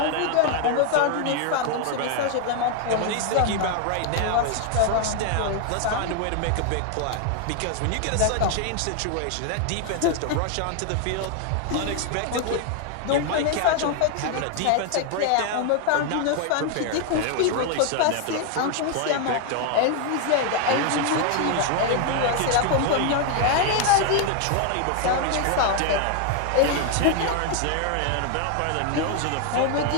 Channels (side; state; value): both; different; correlation 0.00